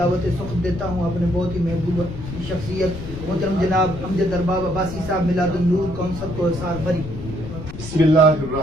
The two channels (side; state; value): left; noise; rumble, 10 dB below the sound